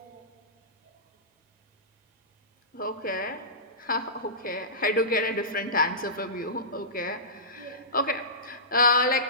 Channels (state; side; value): normal; both; correlation -0.20